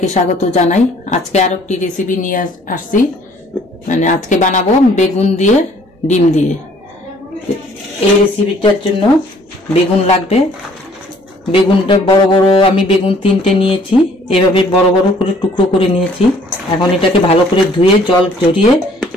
স্বাগত জানাই। আজকে আরেকটি রেসিপি নিয়ে আসছি, মানে আজকে বানাবো বেগুন দিয়ে ডিম দিয়ে। এই রেসিপিটার জন্য বেগুন লাগবে। বেগুনটা বড় বড় আমি বেগুন 3টে নিয়েছি, এভাবে বড় বড় করে টুকরো করে নিয়েছি। এখন এটাকে ভালো করে ধুয়ে জল ঝরিয়ে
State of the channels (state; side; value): normal; both; correlation 0.59